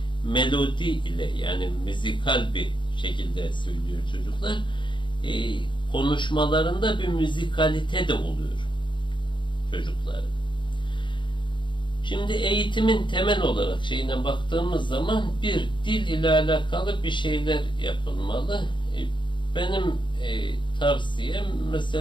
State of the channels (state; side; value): late; right; 0.23 ms